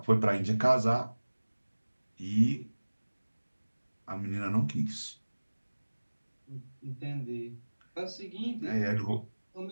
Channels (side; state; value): both; inverted; correlation -1.00